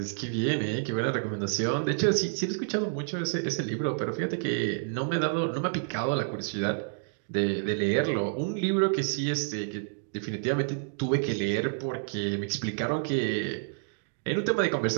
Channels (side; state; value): left; silent; digital silence